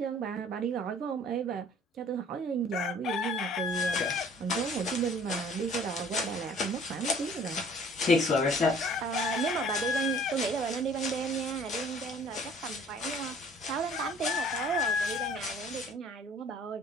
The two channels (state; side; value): normal; both; correlation 0.53